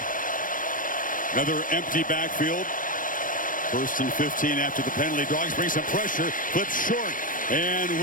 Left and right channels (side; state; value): right; late; 0.39 ms